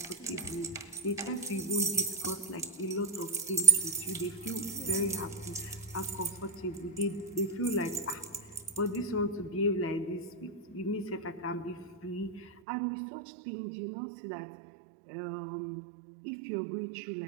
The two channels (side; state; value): left; drops out; at 12.5 s